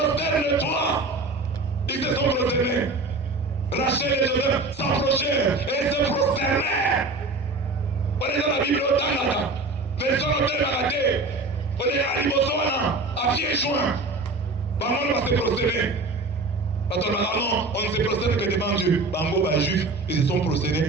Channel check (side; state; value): left; quieter; 3.3 dB